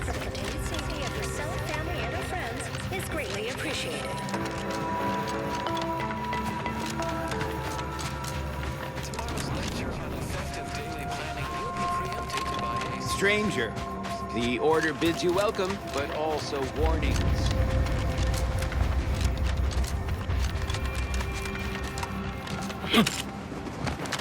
the continued safety of yourself, family, and your friends is greatly appreciated. Stranger, the order bids you welcome, but also warnings.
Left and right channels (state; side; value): identical; both; correlation 1.00